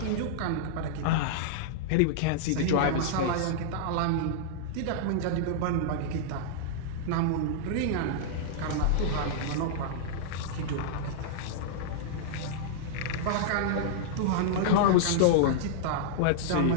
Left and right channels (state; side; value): different; both; correlation -0.02